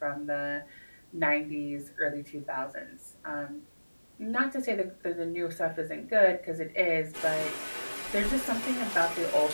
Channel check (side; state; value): both; inverted; correlation -1.00